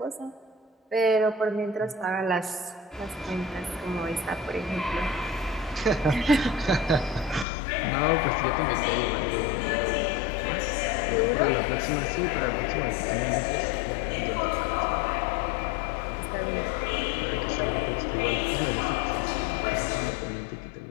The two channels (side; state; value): right; drops out; at 7.5 s